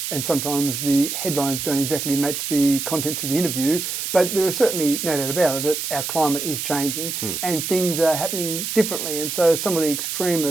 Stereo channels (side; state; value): right; noise; hiss, 4 dB below the sound